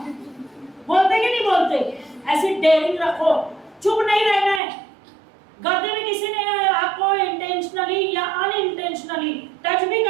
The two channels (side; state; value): left; drops out; at 4.6 s